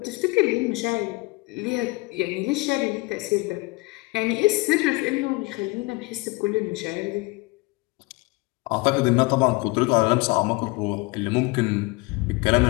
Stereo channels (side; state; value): right; quieter; 24.8 dB